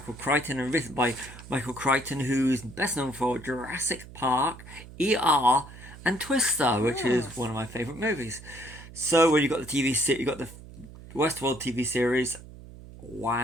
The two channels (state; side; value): noise; right; hum, 17 dB below the sound